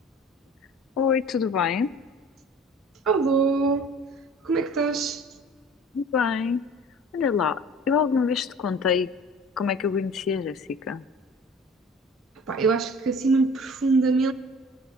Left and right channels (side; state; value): both; normal; correlation 0.44